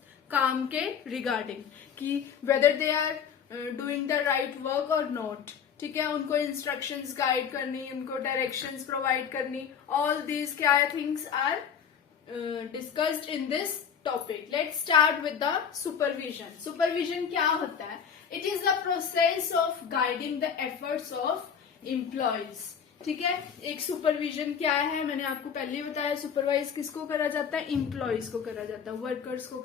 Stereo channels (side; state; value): right; quieter; 7.4 dB